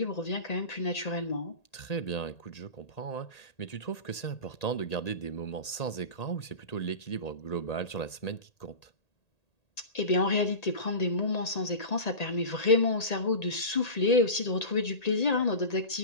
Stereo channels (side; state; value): right; late; 1.8 ms